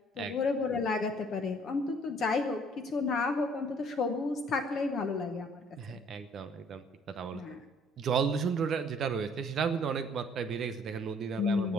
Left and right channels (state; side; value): normal; both; correlation 0.59